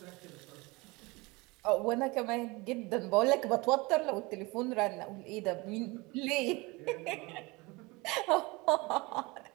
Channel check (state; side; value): quieter; left; 24.4 dB